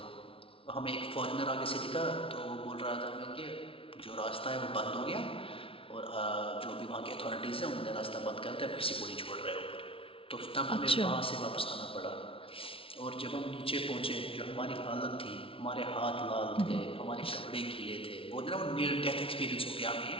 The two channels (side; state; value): right; late; 0.26 ms